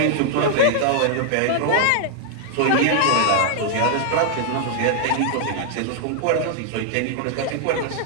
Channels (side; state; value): both; different; correlation 0.00